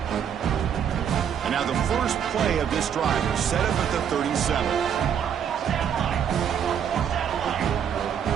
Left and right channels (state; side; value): quieter; left; 8.4 dB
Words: And now the first play of this drive is set up at the 37.